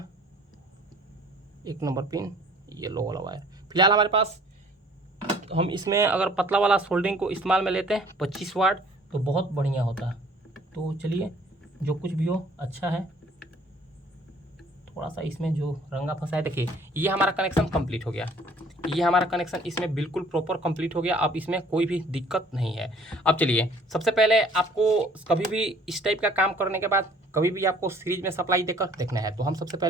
1 नंबर पिन येलो वाला वायर। फिलहाल हमारे पास, हम इसमें अगर पतला वाला सोल्डरिंग को इस्तेमाल में लेते हैं 25 वाट तो बहुत बढ़िया होता है। तो चलिए जो कुछ भी हो अच्छा है, थोड़ा सा इसमें जो रंगा फंसा है, देखिए ये हमारा कनेक्शन कंप्लीट हो गया, ये हमारा कनेक्शन इसमें बिल्कुल प्रॉपर कंप्लीट हो गया। अब इसमें कोई भी दिक्कत नहीं है। अब चलिए सबसे पहले आपको कभी भी इस टाइप का काम करने के बाद कभी भी आपको सीरीज में सप्लाई देकर देखना है, तो हम सबसे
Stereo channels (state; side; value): normal; both; correlation 0.55